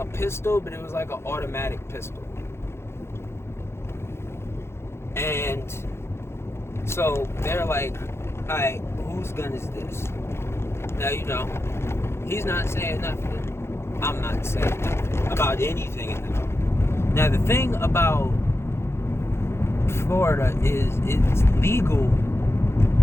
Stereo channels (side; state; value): right; late; 0.12 ms